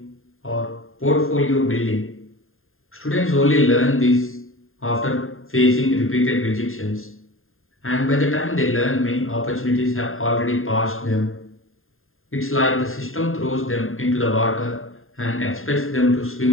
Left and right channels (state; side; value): late; right; 0.61 ms